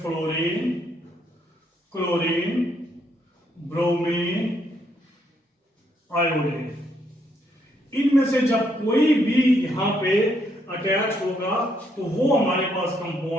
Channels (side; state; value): both; normal; correlation 0.74